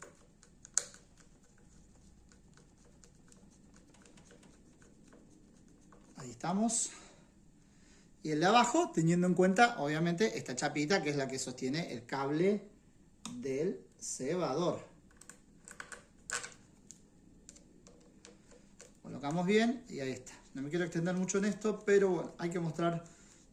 Ahí estamos. Y el de abajo, teniendo en cuenta, obviamente, esta chapita que es la que sostiene el cable del cebador. Colocamos bien y ahí está. No me quiero extender mucho en esto, pero bueno, hay que mostrar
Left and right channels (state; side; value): identical; both; correlation 1.00